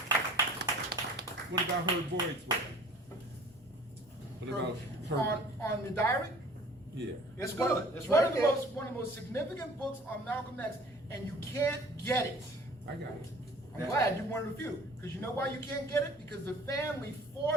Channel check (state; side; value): normal; both; correlation 0.49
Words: What about Herb Boyd's work? What about Herb? On the diary? Yeah. It's One good. of It's the right there. one of the most significant books on Malcolm X, and you can't get it. I got it. I'm glad you're one of the few, because you know why you can't get it? Because the family